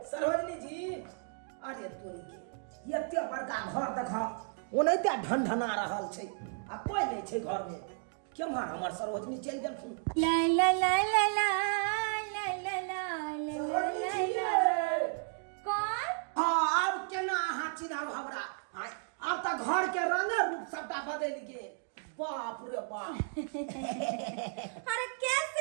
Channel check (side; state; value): left; silent; 55 dB below the other